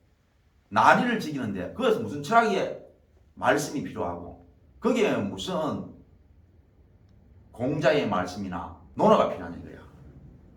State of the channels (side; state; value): both; identical; correlation 1.00